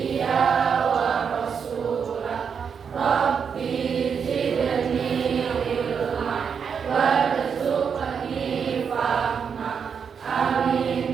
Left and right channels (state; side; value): quieter; left; 6.7 dB